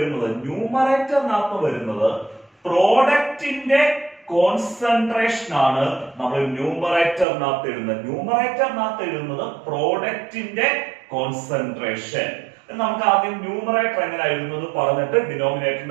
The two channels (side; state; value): left; drops out; at 7.2 s